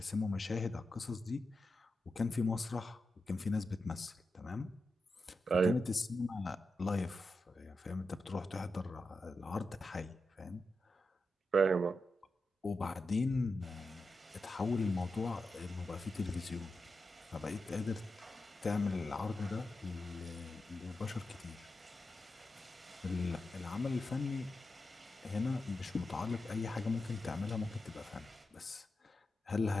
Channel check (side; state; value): both; normal; correlation 0.89